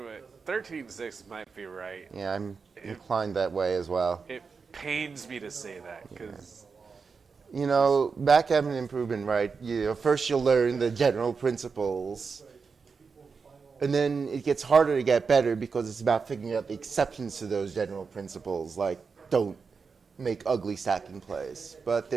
but 13-6 might be right. Yeah, I'm inclined that way as well. It pains me to say that because You know, backgammon improvement, right? First you'll learn the general principles, and then it gets harder to get better because it's about figuring out the exceptions to those general principles, like don't make ugly stacking plays. But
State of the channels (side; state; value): left; quieter; 5.2 dB